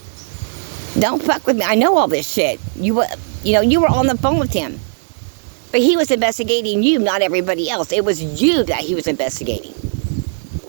Don't fuck with me. I know all this shit. You were on the phone with him. But he was investigating you, not everybody else. It was you that he was investigating.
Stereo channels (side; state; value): left; silent; digital silence